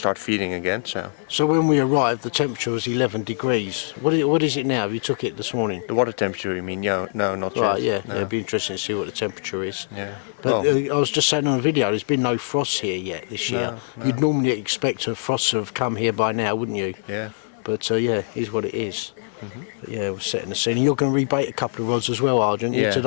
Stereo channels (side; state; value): right; silent; 55 dB below the other